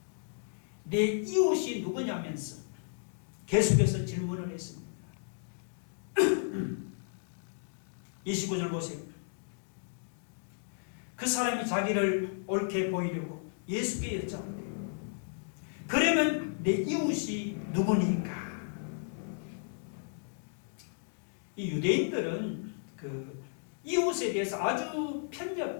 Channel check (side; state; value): right; silent; digital silence